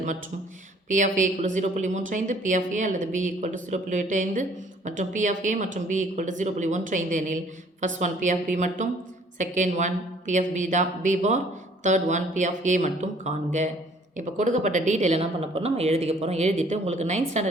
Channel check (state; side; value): normal; both; correlation 0.57